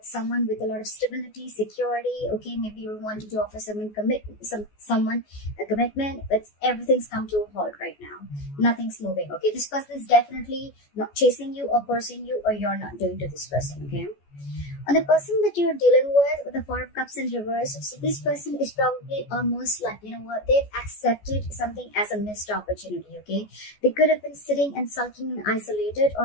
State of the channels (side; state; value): right; late; 14 ms